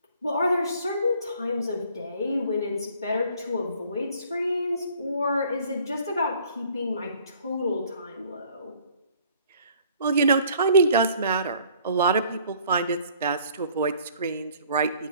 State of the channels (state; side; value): inverted; both; correlation -0.57